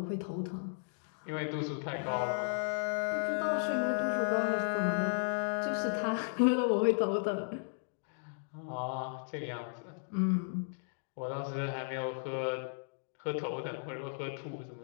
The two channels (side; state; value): right; silent; digital silence